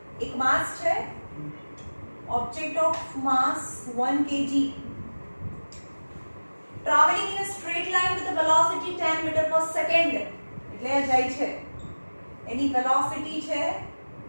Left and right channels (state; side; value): inverted; both; correlation -1.00